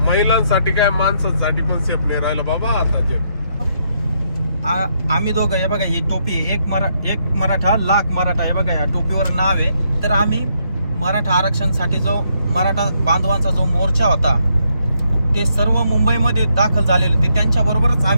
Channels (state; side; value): inverted; both; correlation -0.76